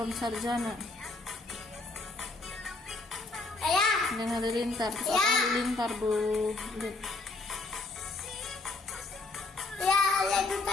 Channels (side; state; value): right; quieter; 3.3 dB